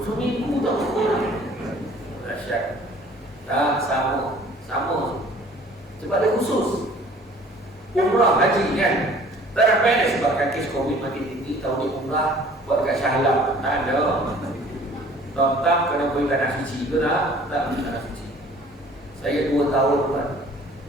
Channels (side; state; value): both; normal; correlation 0.52